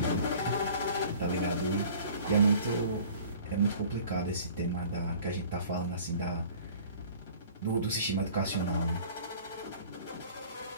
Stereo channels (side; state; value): both; inverted; correlation -0.48